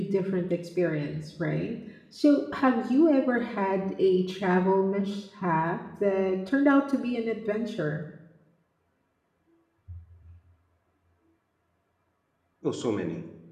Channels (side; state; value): both; identical; correlation 1.00